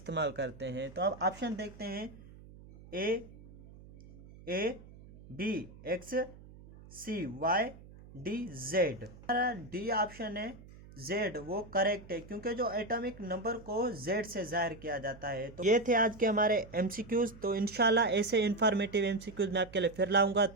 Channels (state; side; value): noise; right; hum, 19 dB below the sound